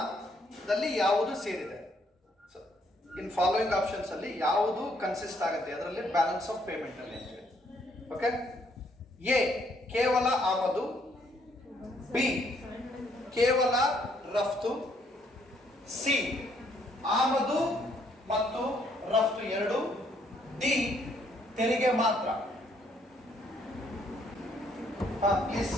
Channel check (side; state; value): both; normal; correlation 0.69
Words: ಯಾವುದು ಸೇರಿದೆ? ಇನ್ ಫಾಲೋಯಿಂಗ್ ಆಪ್ಷನ್ಸ್ ಅಲ್ಲಿ ಯಾವುದು ಕನ್ಸಿಸ್ಟ್ ಆಗುತ್ತೆ ಅದರಲ್ಲಿ ಬ್ಯಾಲೆನ್ಸ್ ಆಫ್ ಪೇಮೆಂಟ್ ಅಲ್ಲಿ ಅಂತೇಳಿ. ಓಕೆ, ಎ ಕೇವಲ ಆಮದು, ಬಿ ಕೇವಲ ರಫ್ತು, ಸಿ ಆಮದು ಮತ್ತು ರಫ್ತು ಎರಡು, ಡಿ ತೆರಿಗೆ ಮಾತ್ರ. ಪ್ಲೀಸ್